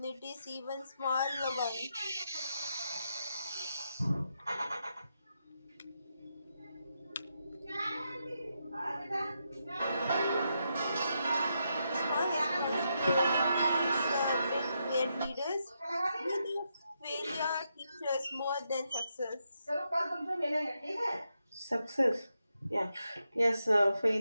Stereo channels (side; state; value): both; inverted; correlation -0.83